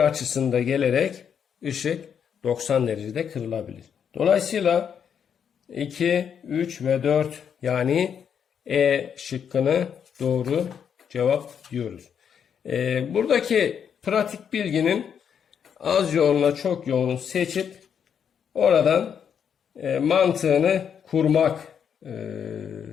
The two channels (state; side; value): quieter; right; 7.8 dB